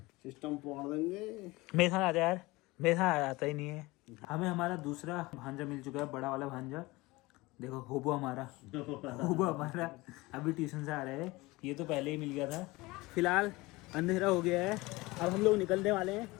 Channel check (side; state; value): right; quieter; 21.8 dB